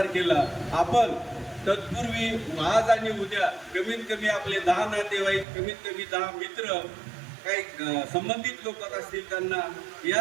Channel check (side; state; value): left; drops out; at 5.5 s